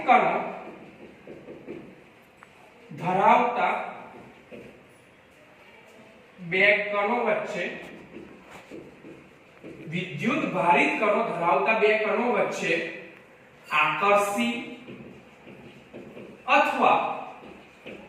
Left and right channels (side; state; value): both; identical; correlation 1.00